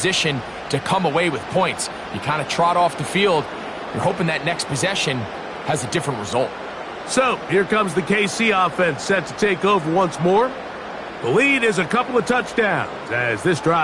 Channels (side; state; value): both; identical; correlation 1.00